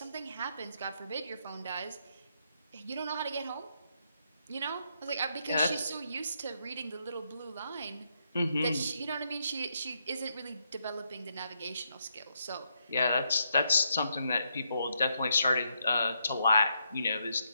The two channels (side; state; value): both; inverted; correlation -0.79